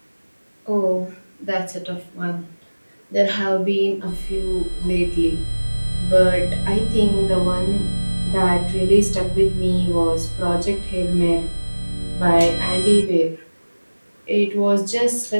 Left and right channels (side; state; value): both; inverted; correlation -1.00